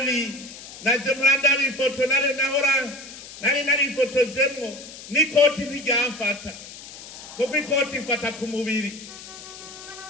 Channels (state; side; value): noise; left; hiss, 15 dB below the sound